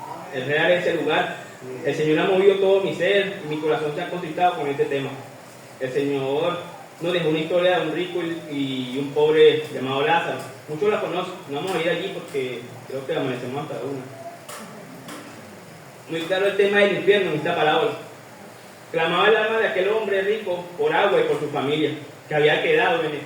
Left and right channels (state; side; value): identical; both; correlation 1.00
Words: Es real ese lugar. El Señor ha movido todo mi ser y mi corazón se ha contristado con este tema. El Señor nos dejó una historia de un rico y un pobre llamado Lázaro. Muchos la conocen. No vamos a ir allí porque creo que amanecemos hasta una. Muy claro el tema del infierno en esta parábola. Clamaba el alma de aquel hombre rico por agua y por su familia, que había quedado en